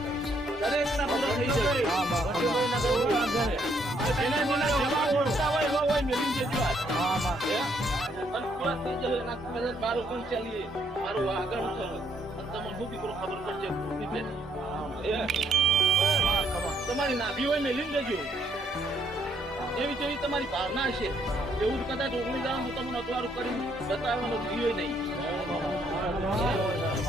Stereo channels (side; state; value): both; normal; correlation 0.70